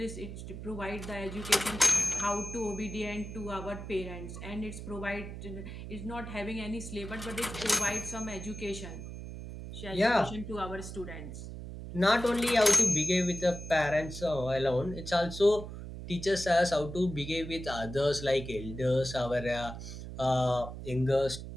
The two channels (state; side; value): noise; right; hum, 9 dB below the sound